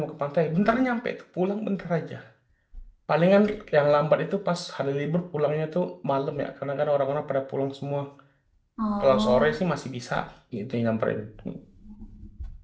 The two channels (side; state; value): both; identical; correlation 1.00